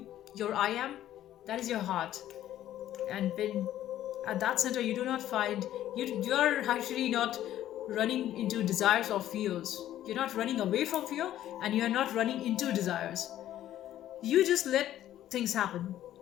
Your I am. That is your heart. And when at that center you do not find, you are actually not running into desires or fears. You're not running away from fear, and you're not running into desires. You just let things happen,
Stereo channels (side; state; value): right; quieter; 12.5 dB